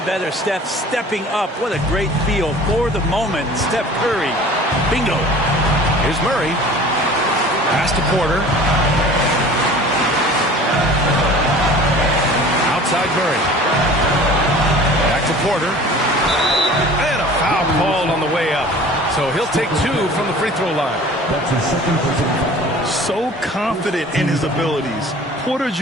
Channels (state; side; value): normal; both; correlation 0.44